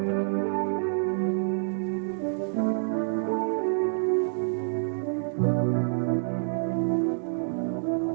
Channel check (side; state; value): left; silent; digital silence